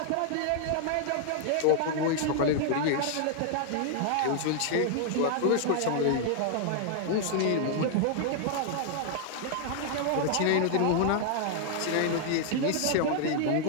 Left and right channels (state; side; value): different; both; correlation 0.00